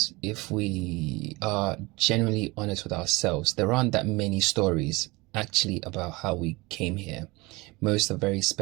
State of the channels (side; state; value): left; quieter; 23.5 dB